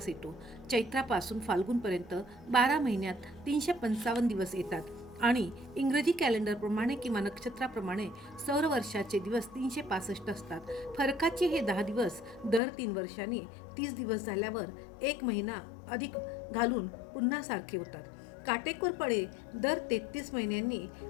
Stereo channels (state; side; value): drops out; right; at 12.6 s